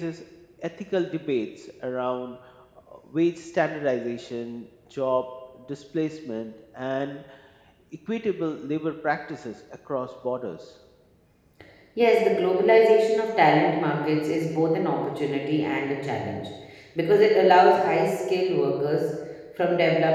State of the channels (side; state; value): both; identical; correlation 1.00